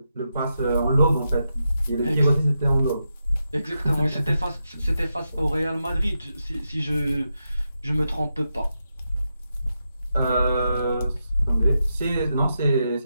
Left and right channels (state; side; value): inverted; both; correlation -0.86